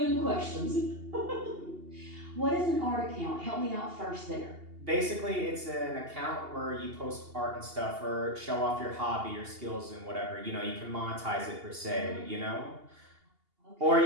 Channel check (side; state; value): left; late; 2.8 ms